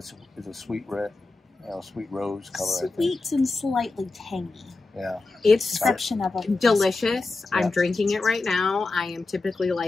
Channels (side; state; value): right; quieter; 3.5 dB